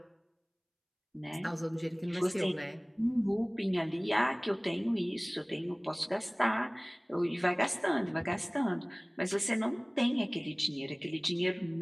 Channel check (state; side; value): identical; both; correlation 1.00